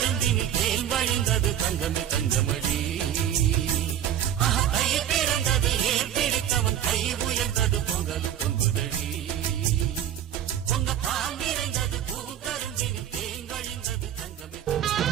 தேன் வழிந்தது தங்கமே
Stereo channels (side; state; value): left; quieter; 10.3 dB